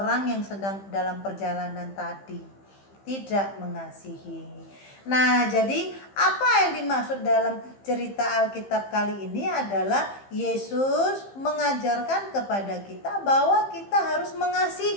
yang sedang dalam perjalanan tadi. Tidak mengasihi. Nah, jadi apa yang dimaksud dalam cerita Alkitab kali ini adalah Yesus mengajarkan kepada kita bahwa kita harus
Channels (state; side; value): late; right; 15 ms